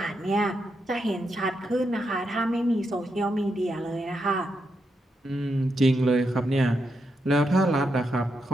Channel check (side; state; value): both; normal; correlation 0.83